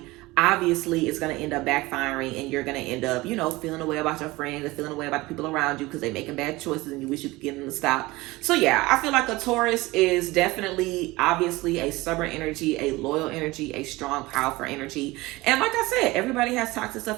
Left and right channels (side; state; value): left; quieter; 20.7 dB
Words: obviously it's going to end up backfiring and you're going to end up, you know, feeling a way about your friends and feeling a way about the people around you because they're making bad choices and you wish you could get them to stop. So yeah, I feel like a Taurus is definitely, obviously, a stubborn energy, a loyal energy, a strong, powerful energy. And like I said, everybody has toxic